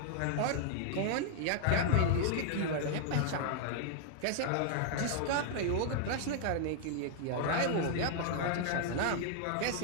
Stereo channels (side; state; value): both; different; correlation -0.01